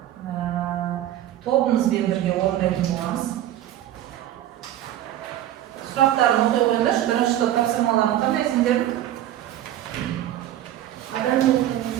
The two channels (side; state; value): left; quieter; 12.6 dB